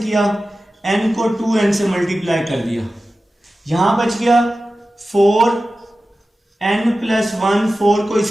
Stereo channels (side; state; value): both; normal; correlation 0.94